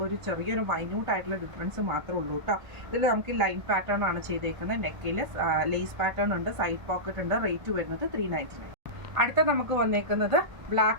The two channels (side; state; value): left; late; 1.2 ms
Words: ഒരു ചെറിയൊരു മൈന്യൂട്ട് ആയിട്ടുള്ള ഡിഫറൻസ് മാത്രമേ ഉള്ളൂ കേട്ടോ. ഇതിൽ നമുക്ക് ലൈൻ പാറ്റേൺ ആണ് ചെയ്തേക്കുന്നത്. നെക്കിൽ ലേസ് പാറ്റേൺ ഉണ്ട്. സൈഡ് പോക്കറ്റ് ഉണ്ട്. റേറ്റ് വരുന്നത് 399. അടുത്ത നമുക്ക് വന്നേക്കുന്നത്